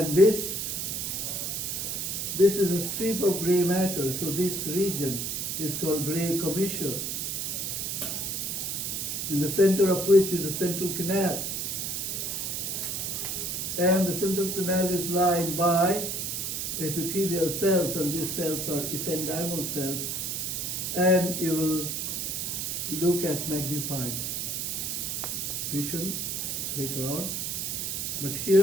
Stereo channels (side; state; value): right; noise; hiss, 2 dB below the sound